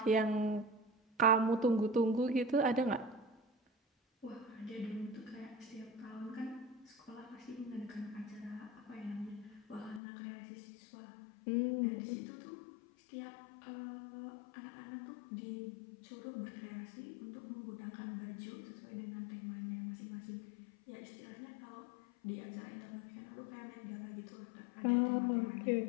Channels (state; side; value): drops out; right; at 10.0 s